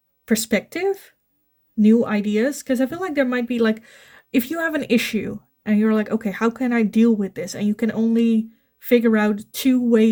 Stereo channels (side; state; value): both; identical; correlation 1.00